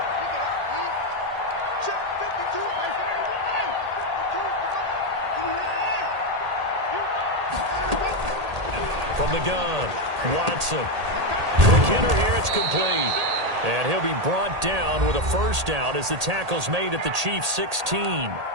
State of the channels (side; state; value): left; late; 1.8 ms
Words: From the gun, Watson. McKinnon here, it's complete. And he'll be brought down with a first down as the tackle's made at the Chiefs' 16.